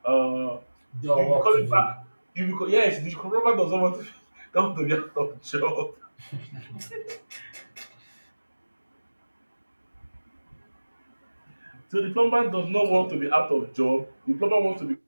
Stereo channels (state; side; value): inverted; both; correlation -1.00